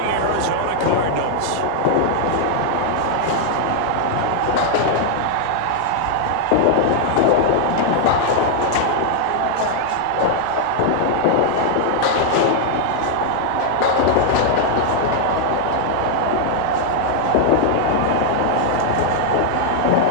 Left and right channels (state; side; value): different; both; correlation 0.00